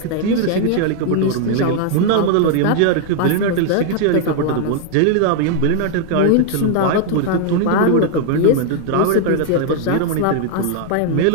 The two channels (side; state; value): both; different; correlation 0.00